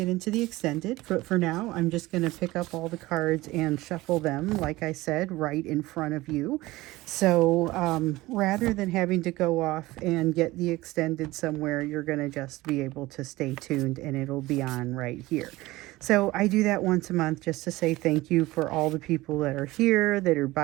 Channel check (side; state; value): left; quieter; 19.1 dB